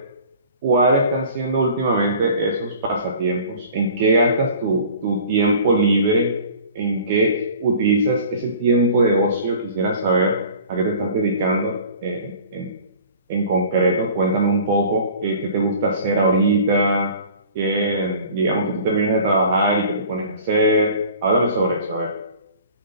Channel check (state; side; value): inverted; both; correlation -0.45